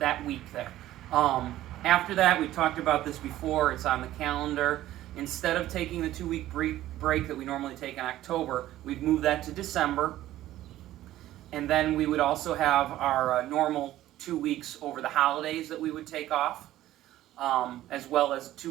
week there. After that, we talked about this before, it's on the calendar. Instead of taking the 2-week break that we normally take in October, we'd move that to December. And then we would also have our normal 2 weeks over the holidays that we would take off, as well as 2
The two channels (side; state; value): left; quieter; 14.4 dB